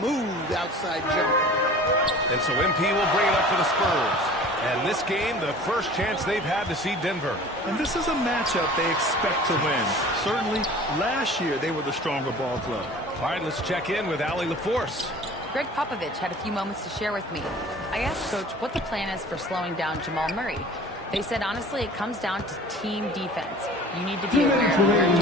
outside jumper. And so MP will bring it up for the Spurs. And this game, the first chance they've had to see Denver. And this is a matchup they expect to win. Certainly, last year they were the stronger ball club. All right, let's check in with Allie LaForce. Greg Popovich had a few moments to share with me. I asked Coach what the plan is for slowing down Jamal Murray. They said, honestly, it comes down to team defense. You need to be aware of where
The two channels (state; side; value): normal; both; correlation 0.44